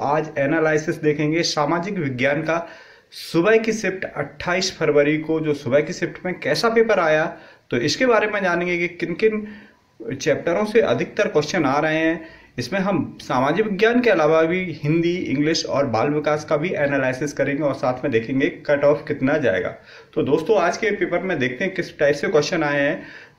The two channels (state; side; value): identical; both; correlation 1.00